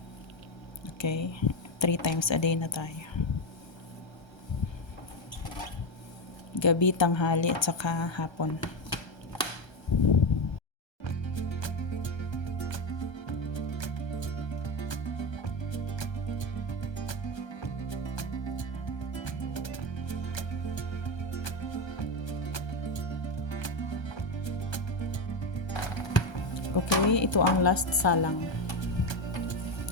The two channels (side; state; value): right; late; 1.3 ms